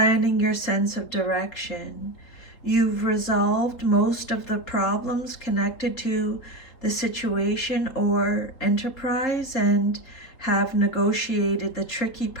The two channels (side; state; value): right; late; 3.9 ms